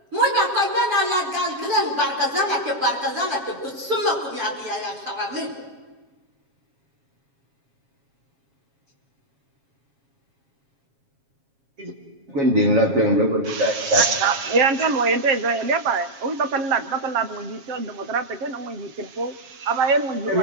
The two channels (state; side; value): late; left; 7.4 ms